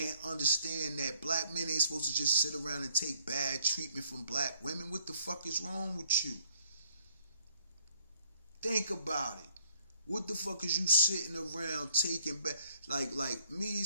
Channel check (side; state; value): both; inverted; correlation -0.66